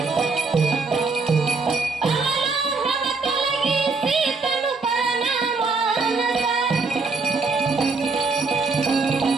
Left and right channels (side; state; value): left; quieter; 4.1 dB